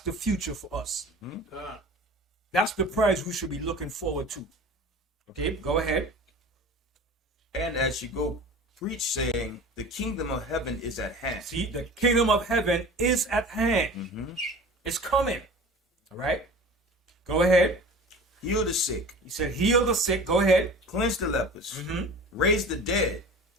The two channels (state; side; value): normal; both; correlation 0.39